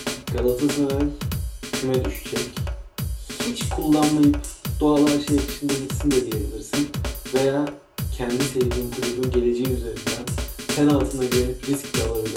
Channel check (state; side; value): identical; both; correlation 1.00